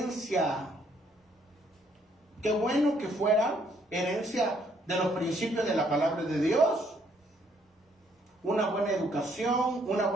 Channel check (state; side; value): normal; both; correlation 0.68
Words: Qué bueno que fuera herencia de los principios de la palabra de Dios. Una buena